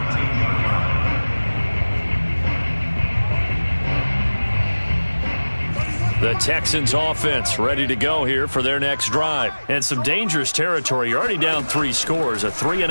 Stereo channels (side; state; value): both; inverted; correlation -1.00